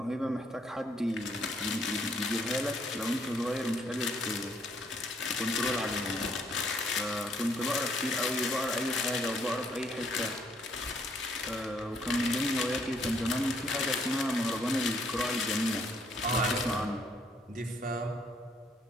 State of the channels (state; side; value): normal; both; correlation 0.68